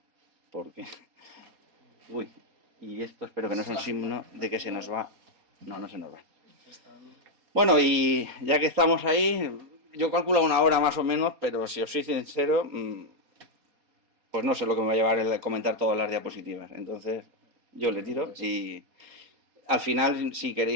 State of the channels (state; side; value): late; left; 4.2 ms